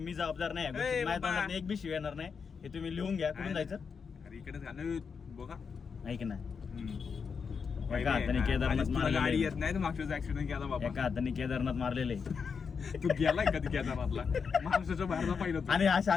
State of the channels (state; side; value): quieter; right; 5.9 dB